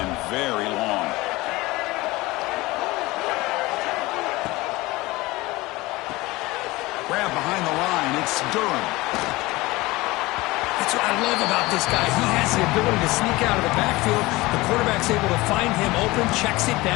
very long. Grab behind the line. It's Durham. That's what I love about this guy. He has the ability to sneak out of the backfield. The quarterback's able to find him open, checks it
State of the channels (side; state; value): right; quieter; 20.7 dB